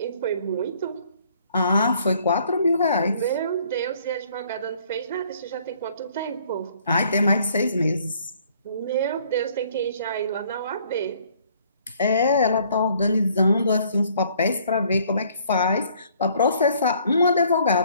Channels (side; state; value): both; inverted; correlation -0.61